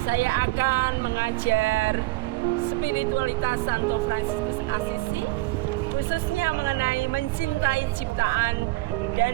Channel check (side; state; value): left; quieter; 21.1 dB